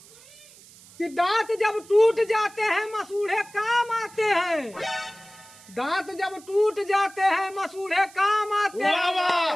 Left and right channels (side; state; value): right; noise; hiss, 23 dB below the sound